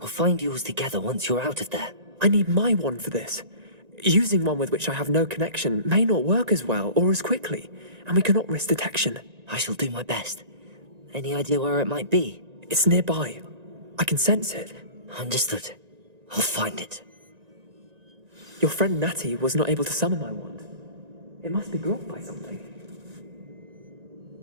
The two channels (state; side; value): late; left; 1.9 ms